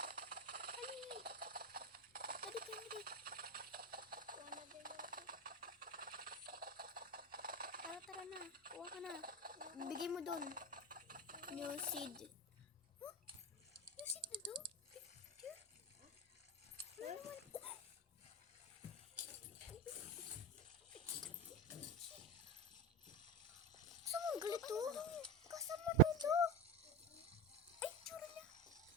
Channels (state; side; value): normal; both; correlation 0.19